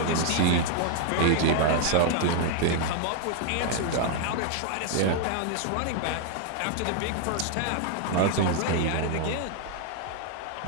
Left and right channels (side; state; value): both; different; correlation 0.00